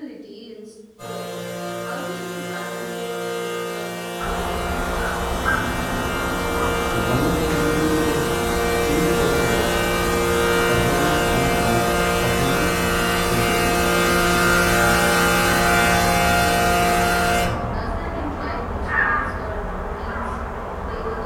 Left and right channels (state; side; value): identical; both; correlation 1.00